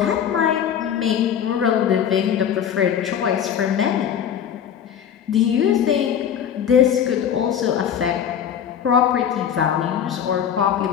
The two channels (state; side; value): quieter; right; 8.8 dB